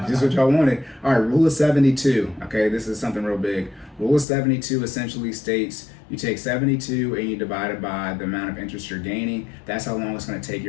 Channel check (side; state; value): right; drops out; at 4.2 s